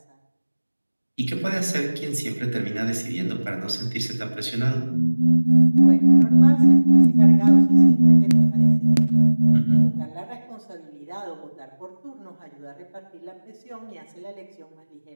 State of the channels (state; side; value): inverted; both; correlation -1.00